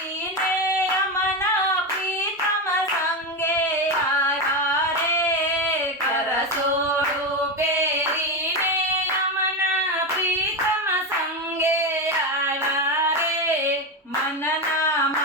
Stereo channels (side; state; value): both; normal; correlation 0.14